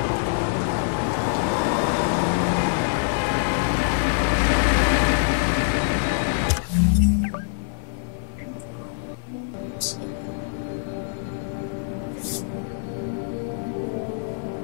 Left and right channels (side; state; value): right; silent; digital silence